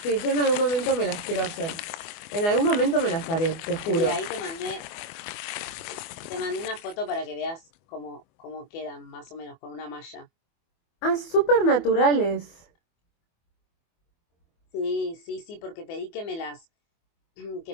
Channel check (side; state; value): right; late; 24 ms